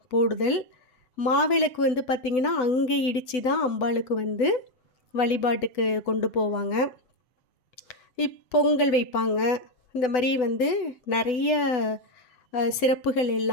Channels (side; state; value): right; late; 8.0 ms